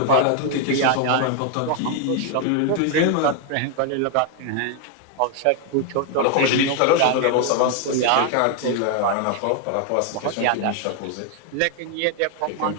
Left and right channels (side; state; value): both; different; correlation 0.00